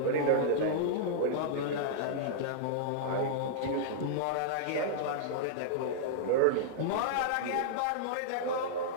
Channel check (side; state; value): both; different; correlation -0.02